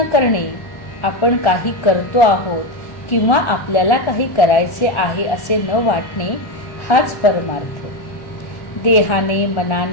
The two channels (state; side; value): late; right; 1.3 ms